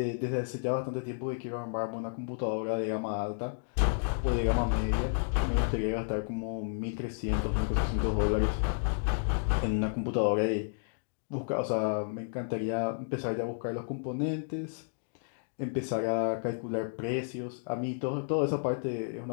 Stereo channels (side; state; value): right; silent; digital silence